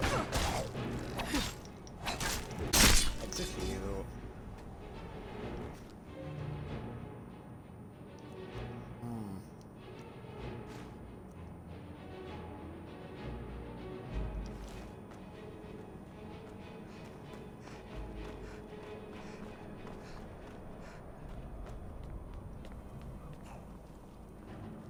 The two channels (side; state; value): both; identical; correlation 1.00